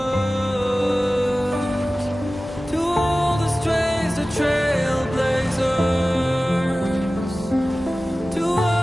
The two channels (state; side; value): normal; both; correlation 0.96